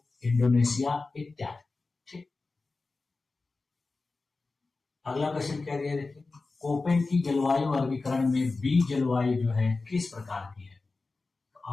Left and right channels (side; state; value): right; quieter; 3.7 dB